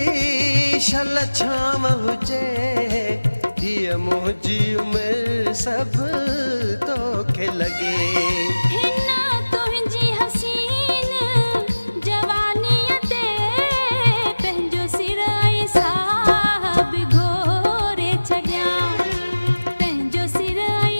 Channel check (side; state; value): both; inverted; correlation -1.00